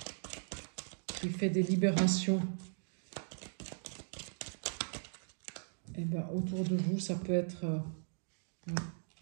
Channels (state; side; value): silent; left; digital silence